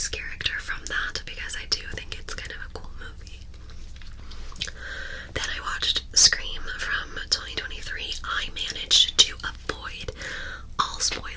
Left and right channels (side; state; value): both; identical; correlation 1.00